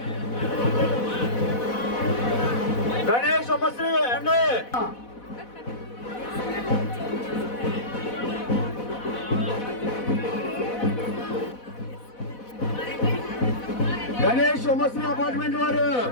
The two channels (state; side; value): late; right; 4.1 ms